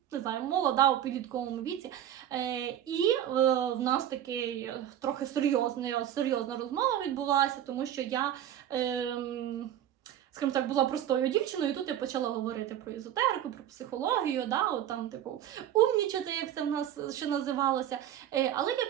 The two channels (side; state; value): left; quieter; 11.0 dB